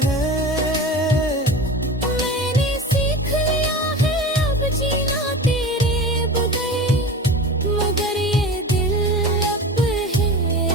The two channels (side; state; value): both; normal; correlation 0.32